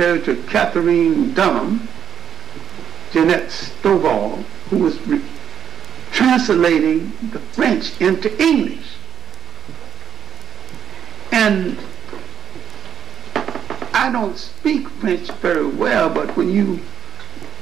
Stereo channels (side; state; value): left; quieter; 8.6 dB